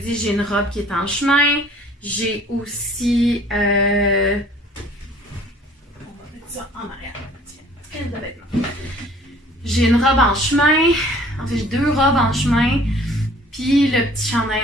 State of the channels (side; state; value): both; normal; correlation 0.53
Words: j'ai une robe qui est en chemin. J'ai aussi... on va mettre ça en arrière. Tiens, j'ai une robe en chemin. En fait, j'ai 2 robes en chemin. Puis le petit chandail